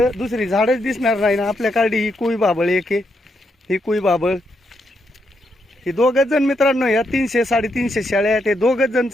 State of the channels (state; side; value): normal; both; correlation 0.80